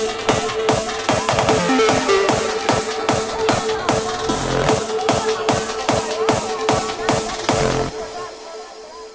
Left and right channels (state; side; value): identical; both; correlation 1.00